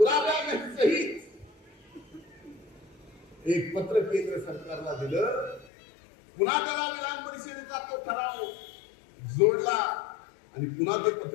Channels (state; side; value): drops out; right; at 5.7 s